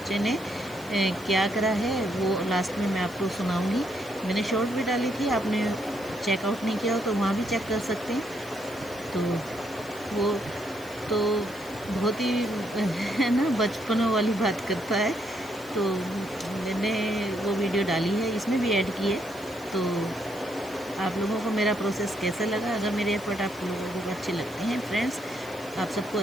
ने क्या करा है वो लास्ट में मैं आपको सुनाऊंगी। मैंने शॉर्ट भी डाली थी, आपने चेकआउट नहीं किया हो तो वहाँ भी चेक कर सकते हैं। तो वो तो बहुत ही है ना, बचपनों वाली बात करता है। तो मैंने वो वीडियो डाली है, इसमें भी ऐड की है। तो आप लोगों को मेरा प्रोसेस कैसा लगा? अगर मेरे एफर्ट आप लोगों को अच्छे लगते हैं, फ्रेंड्स आप सबको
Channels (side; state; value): left; noise; hiss, 20 dB below the sound